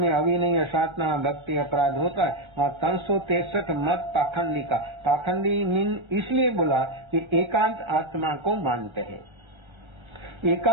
अविनय, असाधना, भक्ति, अपराध होता है वहाँ 363 मत पाखंडी का। पाखंडी मीन इसलिए बोला कि एकांत आत्मा को मानते हैं।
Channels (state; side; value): late; left; 1.3 ms